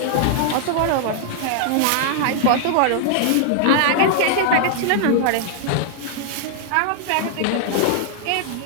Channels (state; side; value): different; both; correlation 0.00